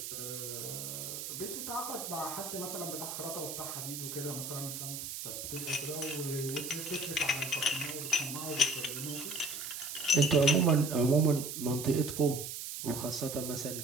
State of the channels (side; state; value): right; noise; hiss, 6 dB below the sound